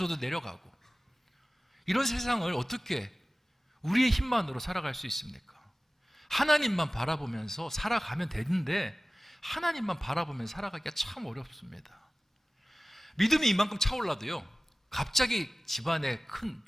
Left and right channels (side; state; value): both; normal; correlation 0.97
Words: 내려가고. 이런 세상을 어떻게 우리의 힘만으로 살아갈 수 있습니까? 하나님만 바라보면서 살아가면 되는데, 하나님만 바라보면서 살아가기가 참 어렵습니다. 믿음이 이만큼 차올라도요, 갑자기 집안에 큰